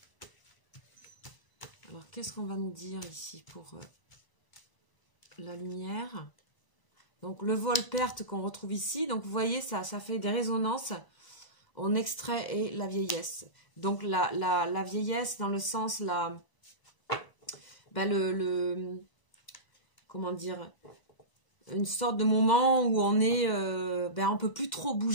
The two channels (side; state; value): right; late; 1.0 ms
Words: Alors, qu'est-ce qu'on va nous dire ici pour la lumière? Donc, le vol-perte qu'on retrouve ici. Donc, vous voyez, ça fait des résonances en extrait et la vieillesse. Donc, la vieillesse dans le sens, comment dire, une sorte de moment où on est, on peut plus trop